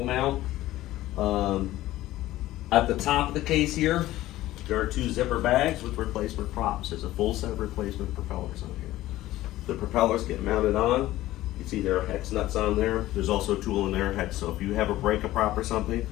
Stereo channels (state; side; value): quieter; right; 15.8 dB